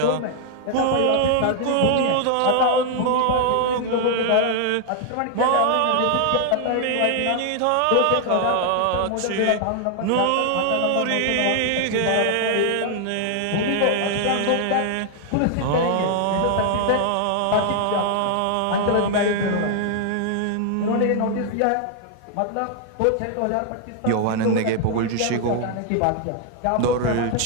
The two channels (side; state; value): both; different; correlation 0.00